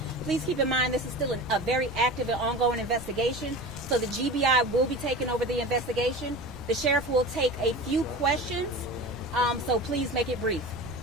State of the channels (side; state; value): both; normal; correlation 0.33